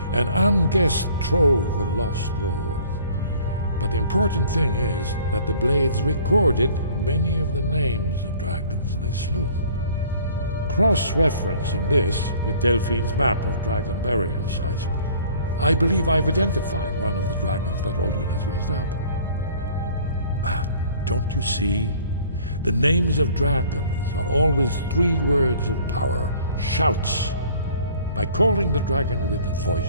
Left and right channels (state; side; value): inverted; both; correlation -0.52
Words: an unguessed trove of lost lore. But the important thing is that the Blades recorded many of the names of dragons they slew. Cross-referencing this with Delphine's map of dragon burial sites, I believe I've identified one of the dragons that Alduin has raised up. Don't you see? The names of dragons are always 3 words of power, shouts. By calling the dragon with a